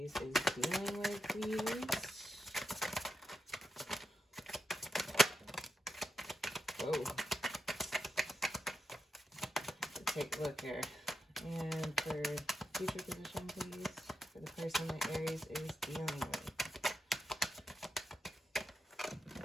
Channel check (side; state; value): both; normal; correlation 0.86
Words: is dealing with, please. Whoa. Let's take a look here. And for future position, please, for the person that Aries is dealing with.